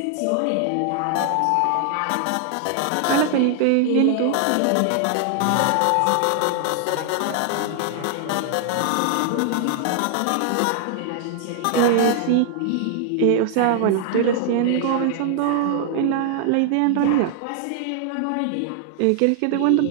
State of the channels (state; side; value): different; both; correlation 0.00